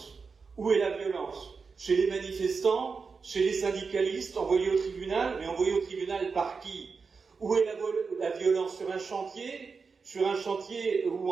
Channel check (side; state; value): left; quieter; 5.0 dB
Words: Où est la violence? Chez les manifestants, chez les syndicalistes, envoyés au tribunal, mais envoyés au tribunal par qui? Où est la violence? Sur un chantier où